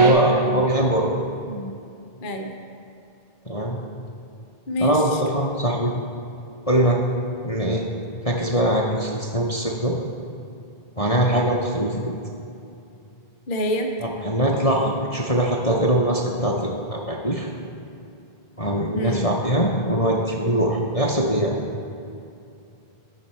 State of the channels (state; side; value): late; right; 1.6 ms